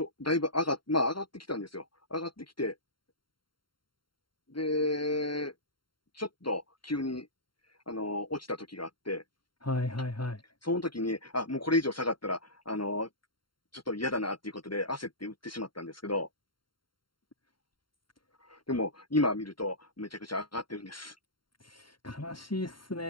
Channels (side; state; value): right; late; 0.73 ms